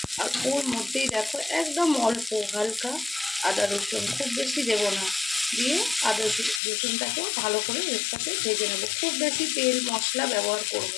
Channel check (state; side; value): drops out; right; at 6.6 s